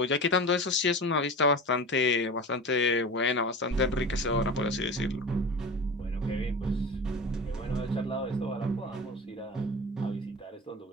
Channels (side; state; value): both; normal; correlation 0.31